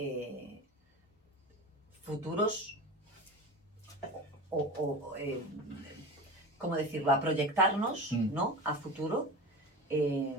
futuros ¿cómo decirlo? A proyectarnos, ¿no? A futuro,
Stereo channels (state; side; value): normal; both; correlation 0.30